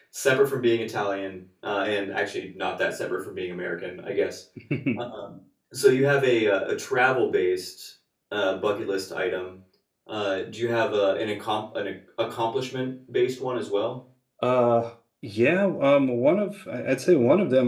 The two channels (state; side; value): identical; both; correlation 1.00